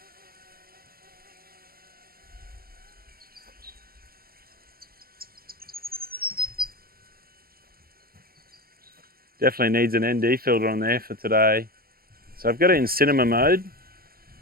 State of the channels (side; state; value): left; late; 0.43 ms